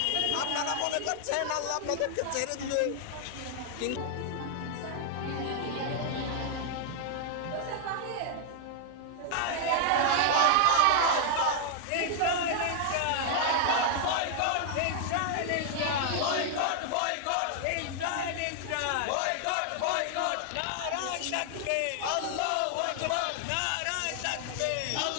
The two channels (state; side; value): different; both; correlation 0.00